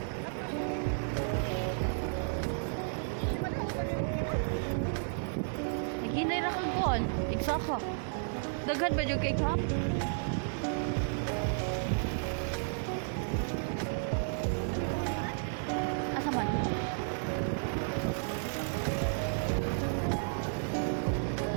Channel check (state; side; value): silent; left; 56 dB below the other